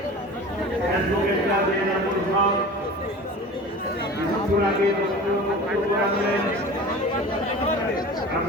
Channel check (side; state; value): both; normal; correlation 0.37